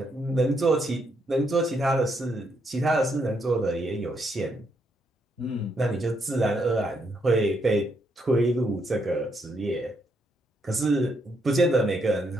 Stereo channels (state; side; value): normal; both; correlation 0.77